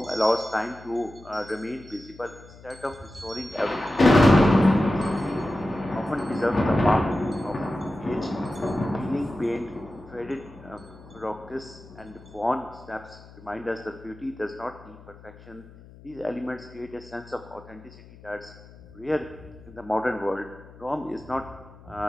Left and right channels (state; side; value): noise; left; hum, 20 dB below the sound